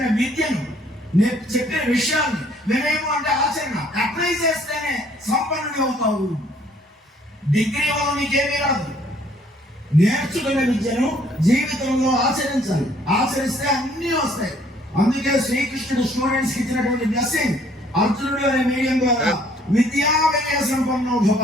విద్యను, చెప్పిన విషయాన్ని, వినయము అంటే ఆచరణ, అప్లై చేస్తేనే సంపన్నుడి అవుతావు. డిగ్రీ వల్ల నీకేమీ రాదు. నేర్చుకున్న విద్యను జీవితంలో ఆచరించాలి. ఆచరిస్తే అన్నీ వస్తాయి. అందుకే శ్రీకృష్ణుడు స్టూడెంట్స్ కి ఇచ్చినటువంటి బ్లెస్సింగ్, అర్జునుడు అనే మీడియం ద్వారా విద్యా వినయ సంపన్నో భవ.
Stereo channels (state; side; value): normal; both; correlation 0.62